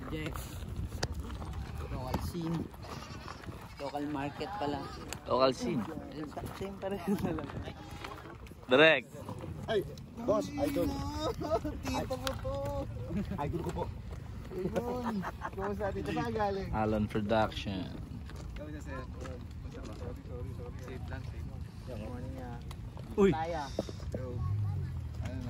Jeff. Local scene. Local market pala. Local scene. Same pa rin na lang. Direct. Ay, boss, idol. Tipo mo to. Idol ko po. Ayun. Kumusta dito saan galing? Alon Production. Kumusta sir? Safe lang, safe. Good morning nga. Uy. Taya. Yo. Ano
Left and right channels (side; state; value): both; identical; correlation 1.00